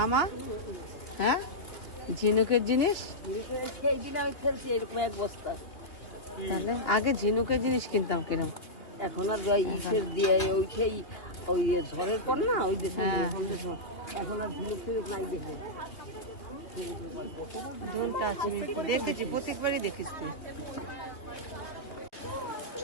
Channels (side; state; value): right; late; 3.0 ms